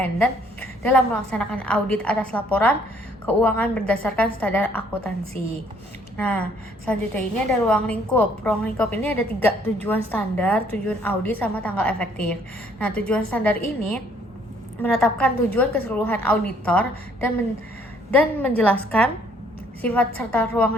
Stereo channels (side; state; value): both; normal; correlation 0.64